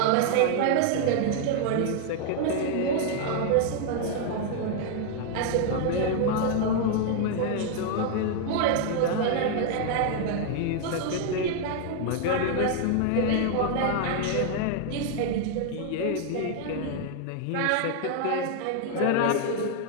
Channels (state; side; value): different; both; correlation 0.00